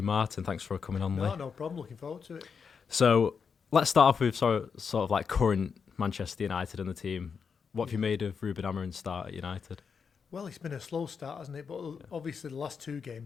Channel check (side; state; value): right; quieter; 6.1 dB